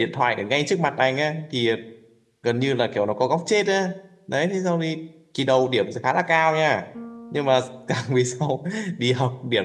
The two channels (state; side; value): identical; both; correlation 1.00